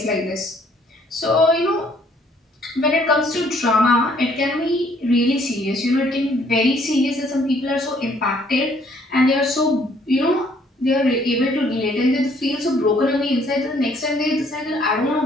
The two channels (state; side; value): normal; both; correlation 0.63